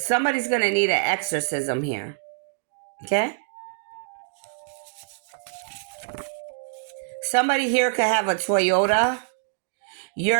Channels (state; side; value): silent; left; digital silence